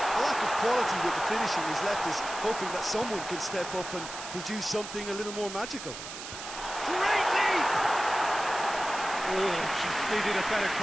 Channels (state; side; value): noise; right; hiss, 10 dB below the sound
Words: lack of quality with the finishing has left us hoping that someone can step up and produce something a little more magical. Great leap! Oh, just needed a better